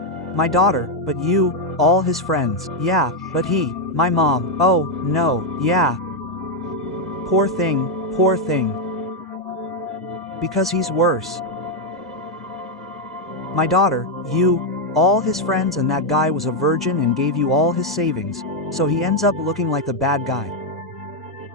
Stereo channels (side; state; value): both; normal; correlation 0.02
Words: My daughter, but you, all his friends, yeah, but he, my mom, oh, no, yeah. Poor thing, poor thing. Because he's worse. My daughter, you, all his friends, and that guy was a virgin and gave you all his savings, so he ends up looking like the bad guy.